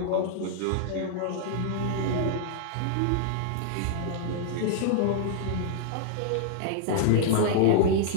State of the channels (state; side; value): different; both; correlation -0.01